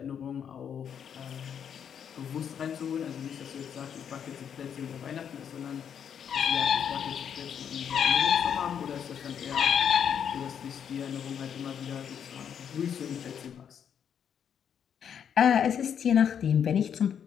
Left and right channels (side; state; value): right; quieter; 8.2 dB